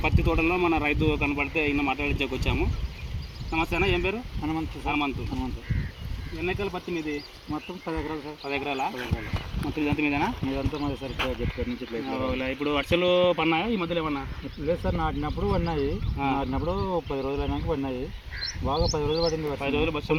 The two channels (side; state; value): both; identical; correlation 1.00